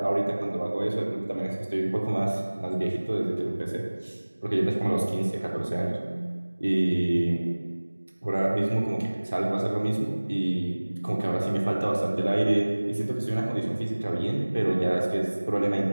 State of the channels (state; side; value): inverted; both; correlation -1.00